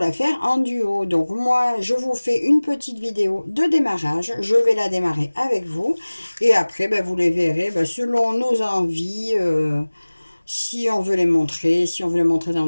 faire en duo. Donc, moi, je vous fais une petite vidéo de démarrage. Je vais la démarrer avec vous. Et après, vous les verrez selon nos envies. Si on veut les montrer, si on veut les montrer dans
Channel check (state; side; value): inverted; both; correlation -1.00